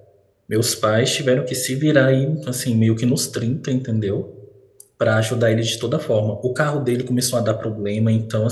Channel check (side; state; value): both; identical; correlation 1.00